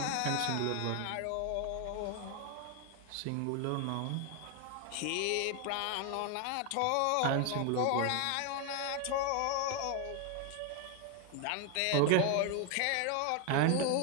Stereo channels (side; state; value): both; different; correlation 0.01